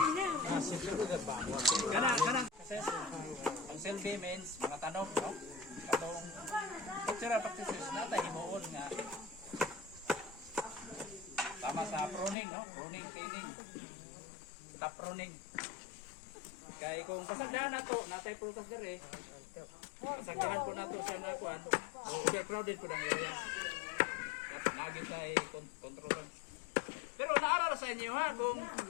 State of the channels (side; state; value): right; drops out; at 12.4 s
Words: Kanang ang selfie means mga tanong, no? Katong cultural practices natin himuon nga tama sa pruning, no? Pruning, thinning. Top pruning. Kaya kung kasagdahan na to, natay prutas dire. Kasagdahan po na to siya na kuan. Overcrowded po ng area. Lagi tayo kontrol. Pero naarara sa inyo ha, kung